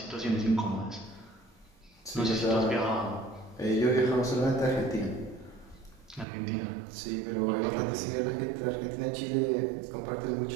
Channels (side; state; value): left; drops out; at 6.2 s